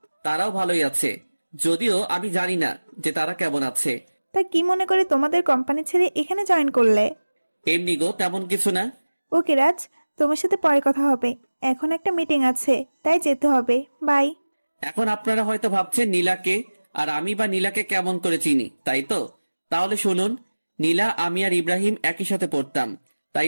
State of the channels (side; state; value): both; inverted; correlation -1.00